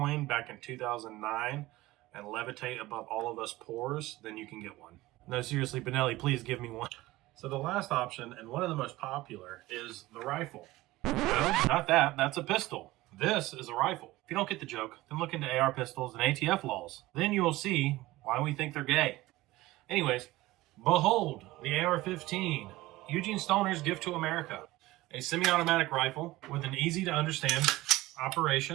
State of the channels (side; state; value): left; quieter; 18.3 dB